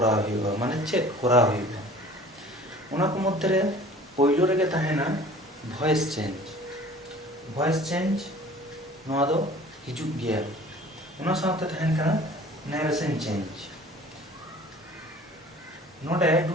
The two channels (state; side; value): normal; both; correlation 0.47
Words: हुआ माने चेक करा हुआ उना को मध्य रे पहिलो रे के ताहेना वॉइस चेंज नोआ दो हिजुग गया उना साथे ताहेन कना नरेशन चेंज नोटे